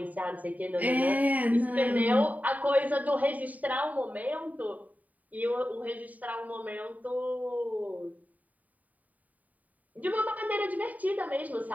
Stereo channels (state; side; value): late; left; 0.074 ms